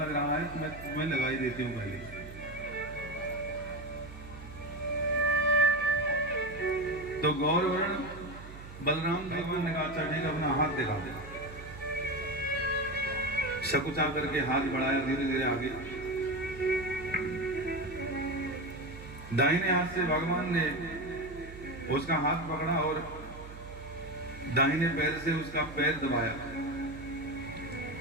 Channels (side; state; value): right; noise; hum, 14 dB below the sound